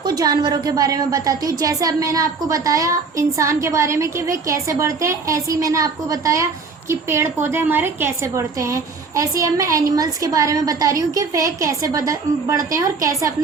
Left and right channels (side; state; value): left; quieter; 4.6 dB